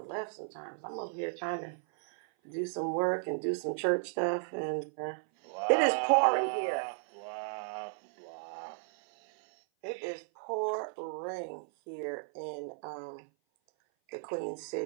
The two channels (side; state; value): left; silent; 55 dB below the other